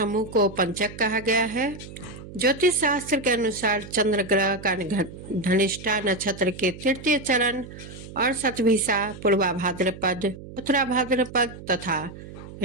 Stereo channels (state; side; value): noise; right; hum, 14 dB below the sound